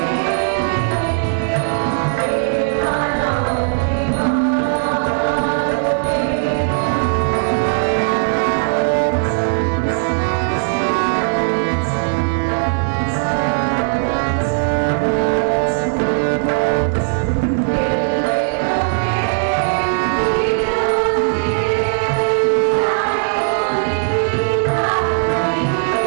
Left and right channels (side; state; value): left; silent; digital silence